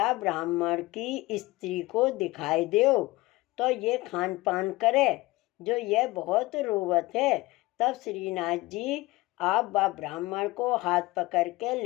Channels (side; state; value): right; quieter; 20.6 dB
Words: ब्राह्मण की स्त्री को दिखाई दो तो ये खान पान करे, जो यह बहुत रोवत है। तब श्रीनाथ जी आप बा ब्राह्मण को हाथ पकड़ के